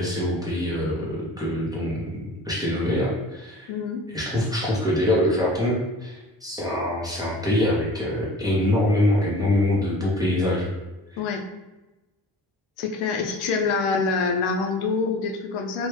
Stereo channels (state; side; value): normal; both; correlation 0.42